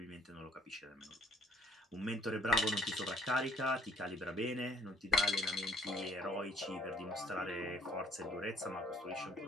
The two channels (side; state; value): both; normal; correlation 0.61